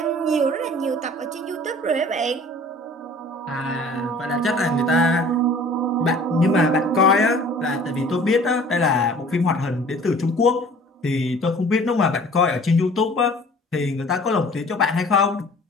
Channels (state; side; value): normal; both; correlation 0.48